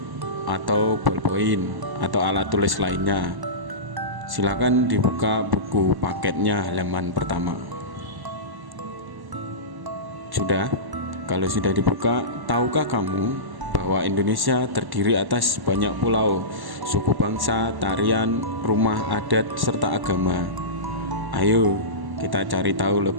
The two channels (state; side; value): late; left; 1.0 ms